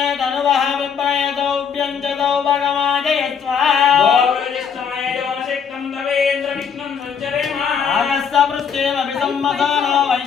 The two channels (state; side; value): quieter; right; 6.9 dB